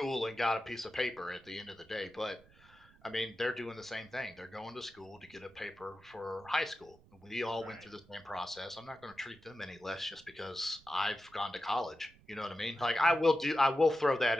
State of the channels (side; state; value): right; noise; rumble, 26 dB below the sound